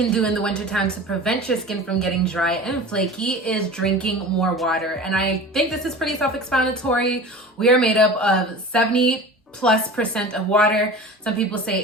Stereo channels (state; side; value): normal; both; correlation 0.36